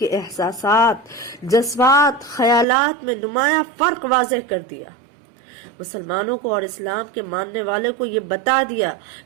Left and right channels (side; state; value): left; drops out; at 2.7 s